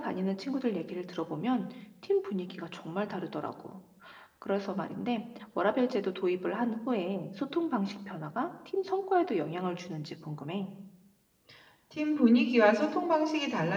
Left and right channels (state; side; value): identical; both; correlation 1.00